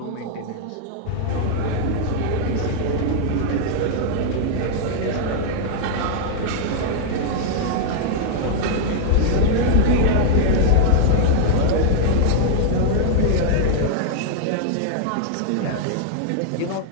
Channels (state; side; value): different; both; correlation -0.01